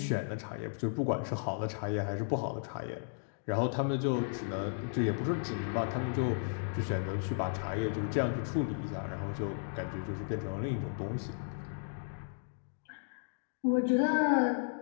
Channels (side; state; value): right; silent; digital silence